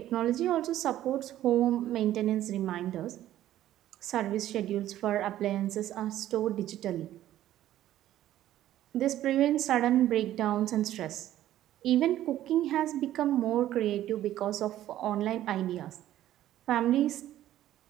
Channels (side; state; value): left; quieter; 13.1 dB